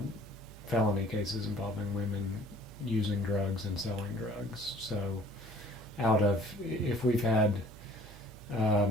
felony cases involving women using drugs and selling drugs. So if we've had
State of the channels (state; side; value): noise; right; hum, 18 dB below the sound